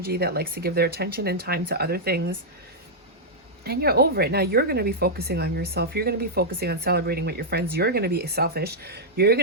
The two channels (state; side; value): normal; both; correlation -0.06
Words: that likes to give their attention and time to other things. And you're over it. Now you're going to be focusing on yourself. You're going to be focusing on celebrating with your friends. You're going to be selfish. You're